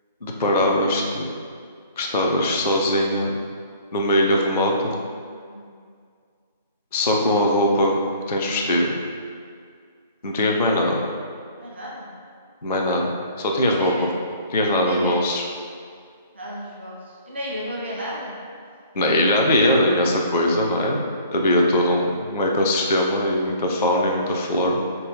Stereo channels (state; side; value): inverted; both; correlation -0.50